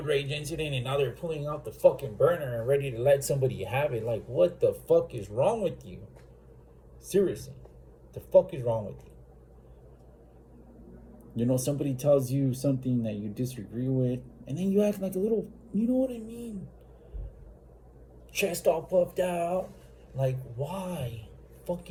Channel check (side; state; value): both; identical; correlation 1.00